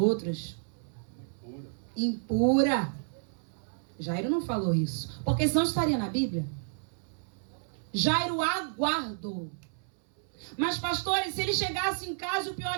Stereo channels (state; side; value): silent; left; 57 dB below the other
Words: Impura. Jairo não falou isso, porque senão estaria na Bíblia. Jairo aguardou. Mas, pastores, se ele chegasse em casa e o